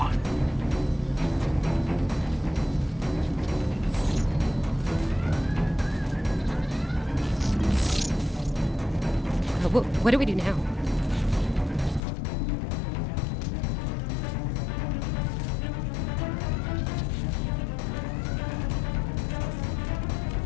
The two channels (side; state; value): right; drops out; at 12.0 s